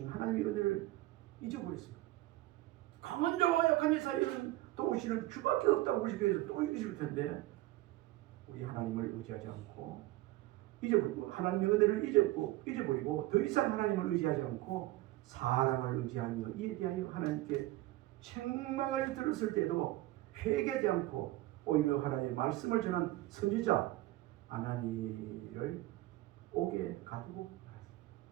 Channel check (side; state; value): left; quieter; 17.4 dB